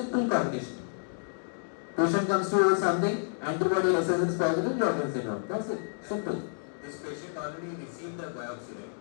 cognition. Patient comes to you with something, antibody SS is positive, Sjogren's syndrome. That's it. Simple. This patient already received a biopsy, right?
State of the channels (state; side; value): silent; right; digital silence